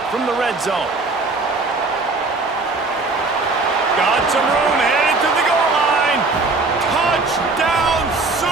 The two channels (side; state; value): left; quieter; 3.6 dB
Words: from the red zone. Got some room, headed to the goal line. Touchdown